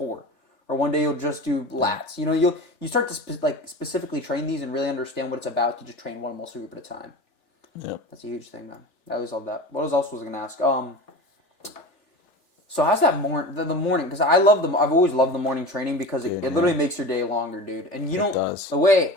Or one day you'll just do lats. You know, you start to specifically train these and really understand what it's about to just train one muscle group at a time. Yeah, that's a huge thing, man. I always love that. What else was I gonna ask? So how's that the morning? Because I've always loved the morning training because Dude, it literally makes your day longer, dude. And you don't. does. The way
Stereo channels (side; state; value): right; late; 3.4 ms